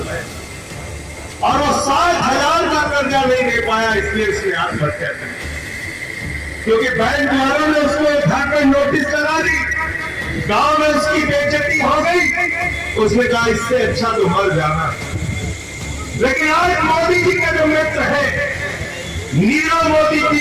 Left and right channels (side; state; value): both; identical; correlation 1.00